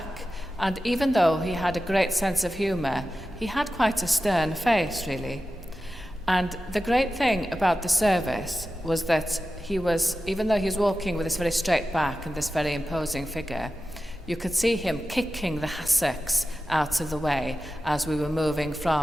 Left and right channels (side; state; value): both; normal; correlation 0.93